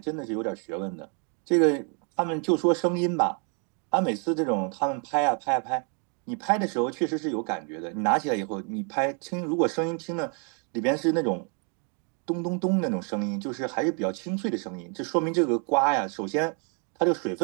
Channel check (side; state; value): left; quieter; 38.9 dB